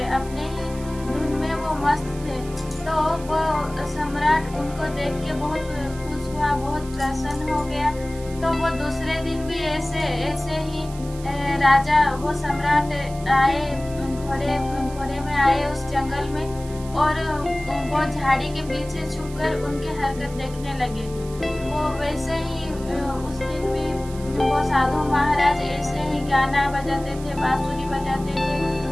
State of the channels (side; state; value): right; noise; hiss, 18 dB below the sound